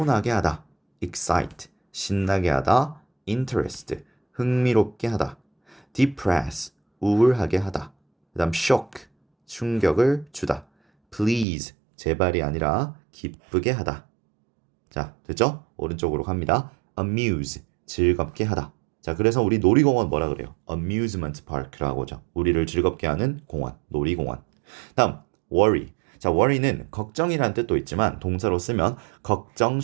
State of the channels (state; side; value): drops out; left; at 11.5 s